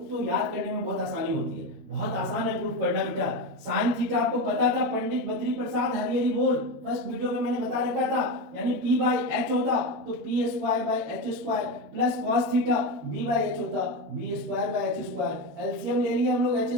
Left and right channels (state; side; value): late; left; 13 ms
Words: तो याद करने में बहुत आसानी होती है। बहुत आसान है प्रूफ करना बेटा। साइन थीटा आपको पता था, पंडित बद्री प्रसाद हरिहरी बोल फर्स्ट वीडियो में मैंने बता रखा था, यानी p बाई एच होता तो P square by H square plus cos theta b by H होता b square by H square. LCM ले लिया हम लोग एच